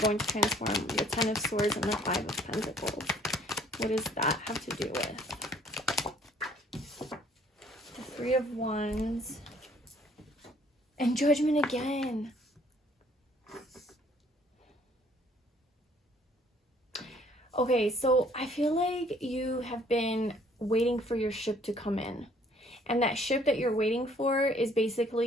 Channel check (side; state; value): both; normal; correlation 0.60